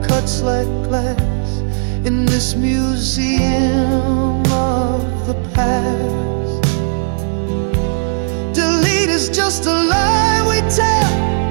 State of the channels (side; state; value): left; silent; digital silence